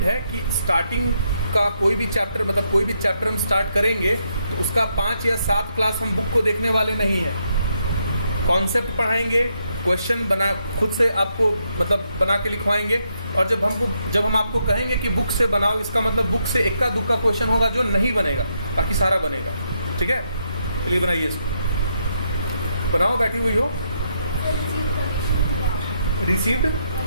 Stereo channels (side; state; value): both; inverted; correlation -0.78